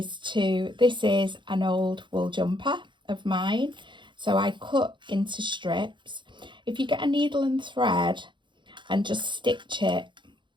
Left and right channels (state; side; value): late; left; 0.23 ms